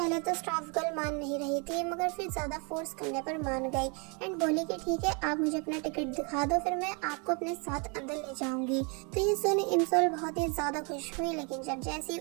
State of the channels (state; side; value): quieter; left; 33.9 dB